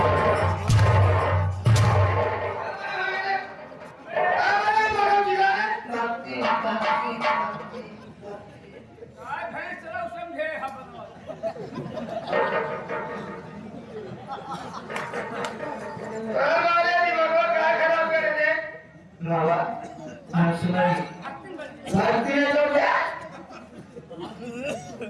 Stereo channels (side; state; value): both; identical; correlation 1.00